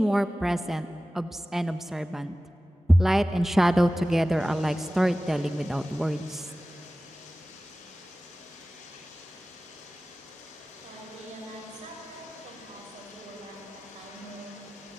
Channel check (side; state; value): both; normal; correlation 0.96